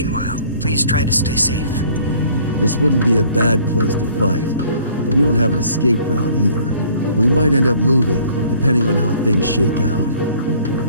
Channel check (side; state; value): both; inverted; correlation -0.56